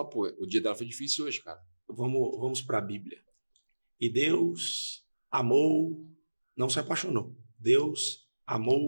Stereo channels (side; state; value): both; inverted; correlation -1.00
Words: pô, o dia dela foi difícil hoje, cara. Vamos para a Bíblia. E Deus amou, não se apaixonou. Deus